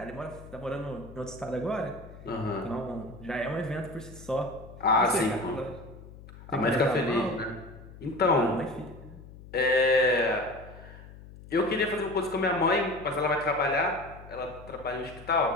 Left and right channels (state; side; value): noise; left; hum, 17 dB below the sound